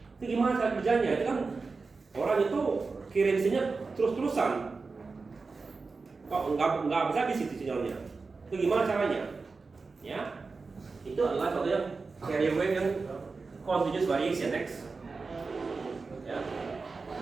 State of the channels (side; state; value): left; quieter; 4.2 dB